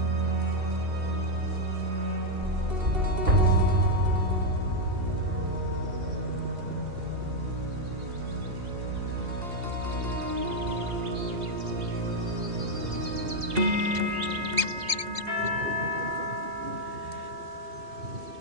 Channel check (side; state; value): left; late; 2.7 ms